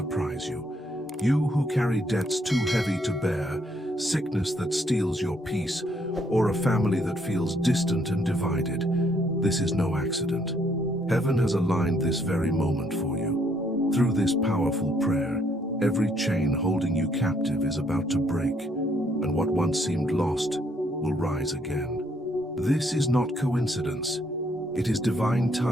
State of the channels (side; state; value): both; normal; correlation 0.69